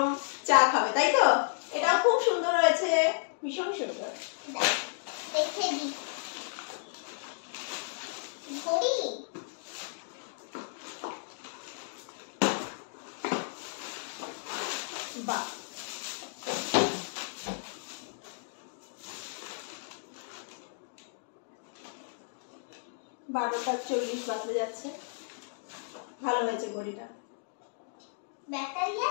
চা খাবে, তাই তো? এটা খুব সুন্দর হয়েছে, ভীষণ সুন্দর। দেখে দি ঘড়ি। বাহ, 12:40 বাজতে যাচ্ছে। ভালো হয়েছে ঘড়িটা। ব্যাটারি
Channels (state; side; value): silent; right; digital silence